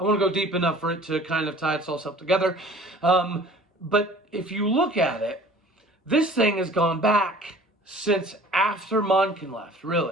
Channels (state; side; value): normal; both; correlation 0.47